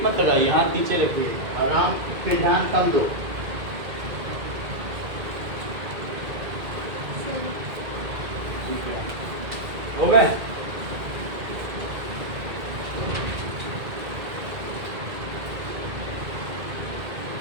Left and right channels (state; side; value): late; left; 2.1 ms